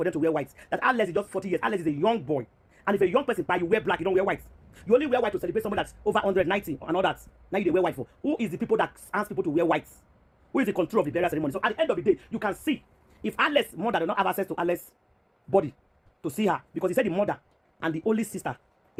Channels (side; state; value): both; identical; correlation 1.00